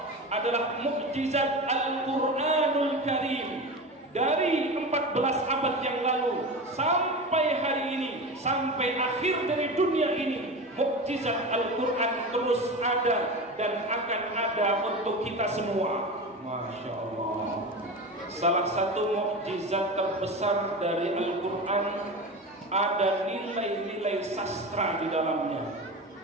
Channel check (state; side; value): normal; both; correlation 0.27